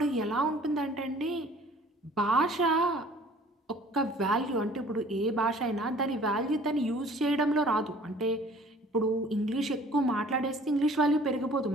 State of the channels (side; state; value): both; normal; correlation 0.52